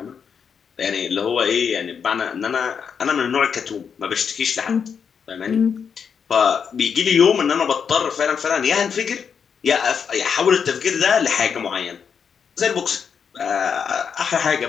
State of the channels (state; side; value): quieter; right; 6.8 dB